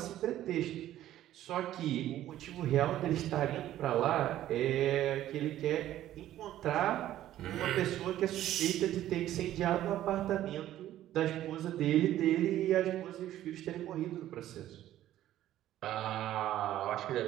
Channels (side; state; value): left; quieter; 13.1 dB